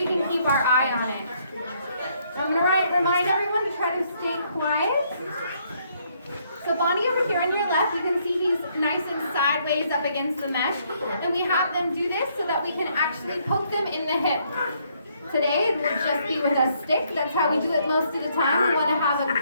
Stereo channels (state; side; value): inverted; both; correlation -0.70